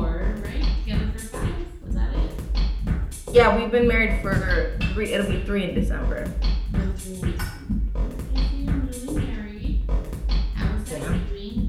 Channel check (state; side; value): identical; both; correlation 1.00